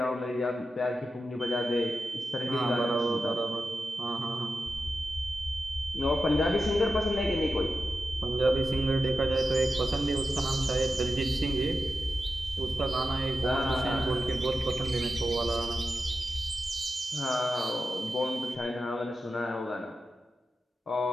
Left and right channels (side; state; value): both; normal; correlation 0.91